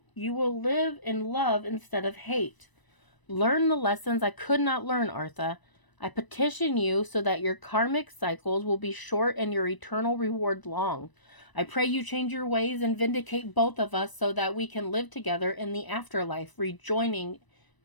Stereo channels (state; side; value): late; right; 1.0 ms